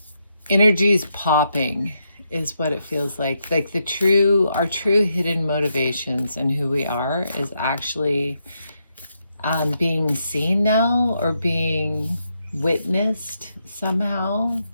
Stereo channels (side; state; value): both; inverted; correlation -0.81